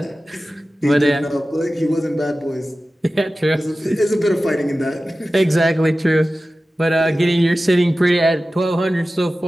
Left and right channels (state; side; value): normal; both; correlation 0.95